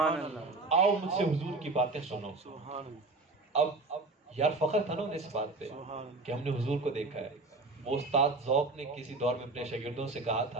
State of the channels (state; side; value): quieter; left; 3.4 dB